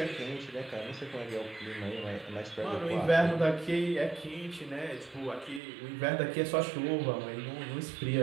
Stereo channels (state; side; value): drops out; left; at 5.6 s